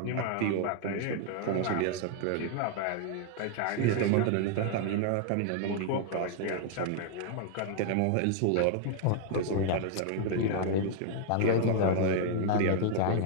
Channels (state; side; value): different; both; correlation 0.00